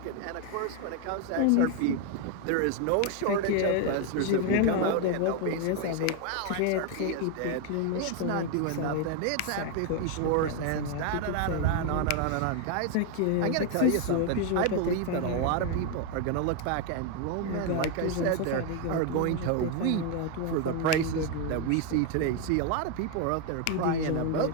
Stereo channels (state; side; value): different; both; correlation 0.01